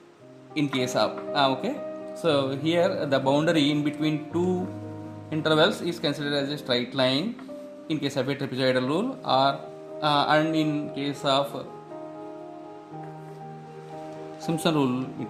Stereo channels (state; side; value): identical; both; correlation 1.00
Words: in case of okay, so here the boundary in between two intervals is considered as a straight line in case of a trapezoidal rule, or and in case of Simpson rule it